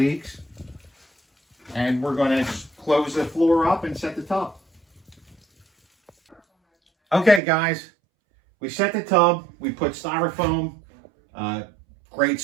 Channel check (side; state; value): left; drops out; at 7.4 s